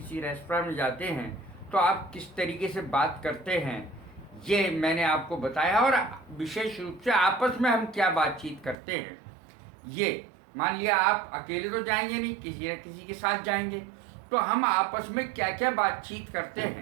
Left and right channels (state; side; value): drops out; left; at 8.8 s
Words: रेस्टोरेंट में जाते हैं, तो आप किस तरीके से बात करते हैं, ये मैंने आपको बताया। और विशेष रूप से आपस में हम क्या बातचीत करते हैं, ये मान लिया आप अकेले तो जाएंगे नहीं, किसी न किसी के साथ जाएंगे, तो हम आपस में क्या क्या बातचीत करते